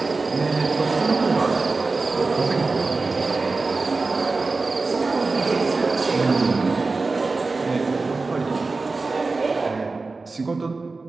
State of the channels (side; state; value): left; quieter; 3.8 dB